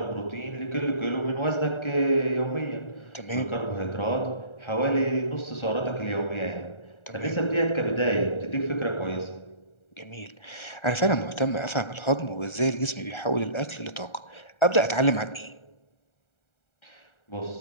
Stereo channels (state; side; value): late; right; 1.3 ms